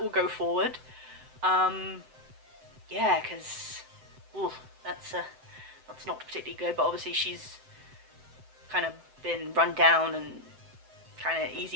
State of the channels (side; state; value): left; late; 7.8 ms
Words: will go forward. Yeah, because that's not particularly good, but obviously she's kind of been run down and kind of